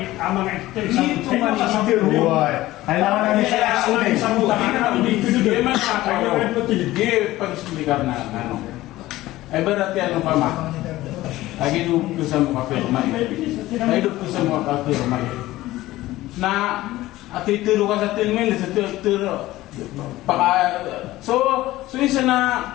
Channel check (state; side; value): quieter; right; 16.8 dB